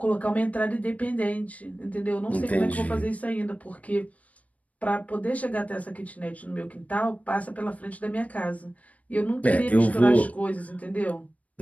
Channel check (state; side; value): late; right; 0.068 ms